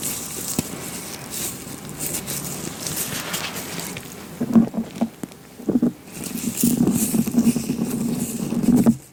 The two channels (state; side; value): identical; both; correlation 1.00